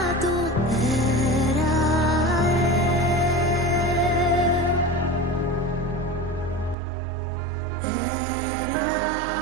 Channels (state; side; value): drops out; left; at 6.8 s